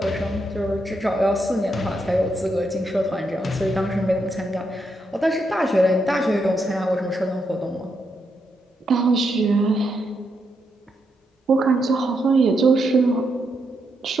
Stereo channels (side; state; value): both; normal; correlation 0.81